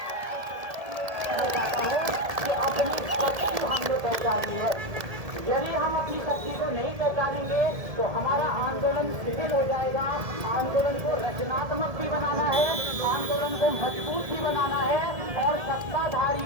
कि अपनी शक्ति हमने पहचानी है। यदि हम अपनी शक्ति को नहीं पहचानेंगे तो हमारा आंदोलन शिथिल हो जाएगा। आंदोलन को रचनात्मक भी बनाना है, आंदोलन को मजबूत भी बनाना है और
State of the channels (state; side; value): late; left; 1.7 ms